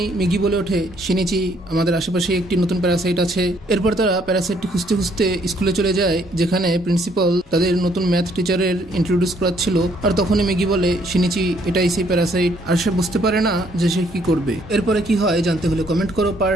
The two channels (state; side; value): normal; both; correlation 0.66